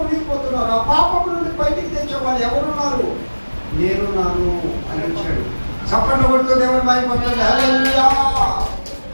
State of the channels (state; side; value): inverted; both; correlation -1.00